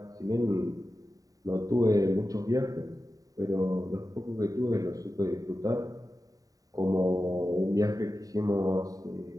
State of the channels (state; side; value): late; left; 0.17 ms